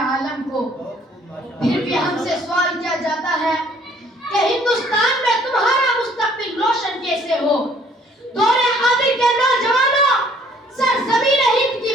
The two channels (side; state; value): both; normal; correlation 0.59